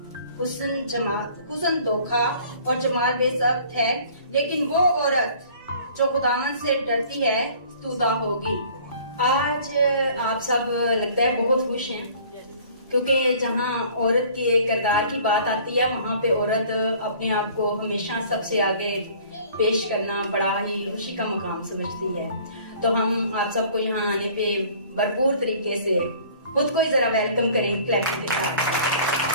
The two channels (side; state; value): both; inverted; correlation -0.51